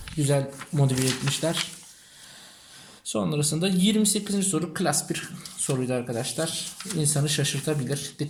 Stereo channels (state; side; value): identical; both; correlation 1.00